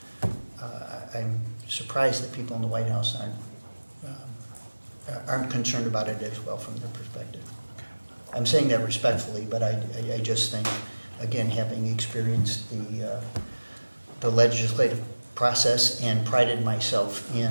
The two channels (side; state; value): both; inverted; correlation -1.00